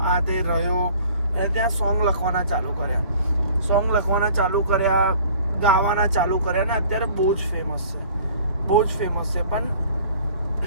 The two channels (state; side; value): inverted; both; correlation -0.51